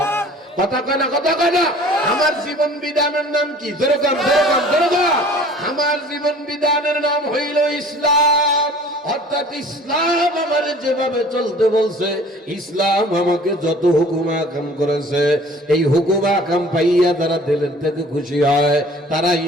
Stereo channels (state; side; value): normal; both; correlation 0.48